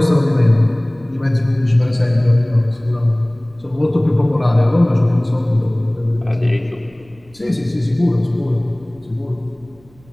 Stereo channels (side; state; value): right; noise; rumble, 28 dB below the sound